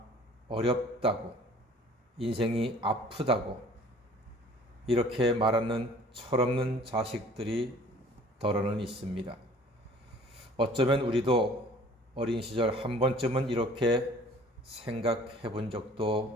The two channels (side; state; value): both; normal; correlation 0.51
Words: 어렵다고, 인생이 아프다고 이렇게 말하는 철없는 자식들이 더러는 있습니다. 어쩌면 우리도 어린 시절 한 번쯤은 이렇게 생각해 본